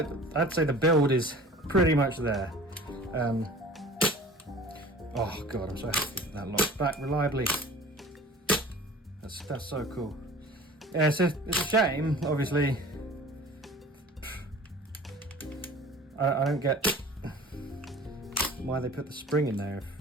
I'd say the build is pretty much there. Oh god, I'm so happy that locks back reliably. That's so cool. Yeah, so it's a shame, obviously. I don't get why they put the spring in there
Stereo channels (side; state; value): both; normal; correlation 0.44